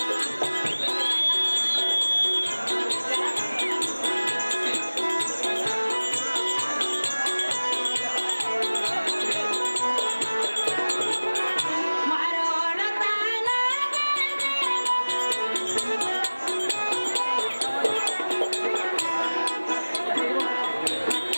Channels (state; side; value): inverted; both; correlation -1.00